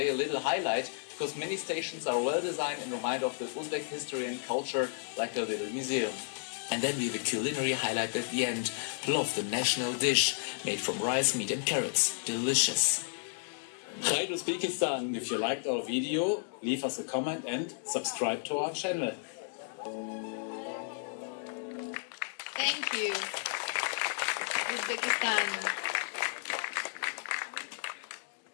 a little highlight because many stations are well designed and remind of the Uzbek history and culture, like a little museum. And then we have a culinary highlight at the end, plov, the national dish, made from rice, meat and carrots. Delicious. Hi Uzbekistan, if you liked our video, leave us a comment and subscribe to our channel. Thank you. Uzbekistan.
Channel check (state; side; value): silent; right; digital silence